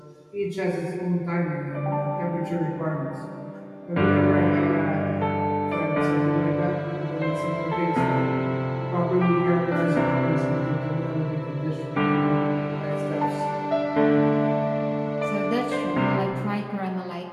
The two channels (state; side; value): identical; both; correlation 1.00